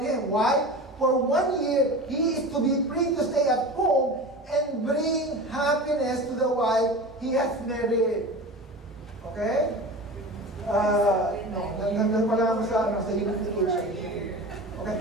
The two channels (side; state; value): both; normal; correlation 0.32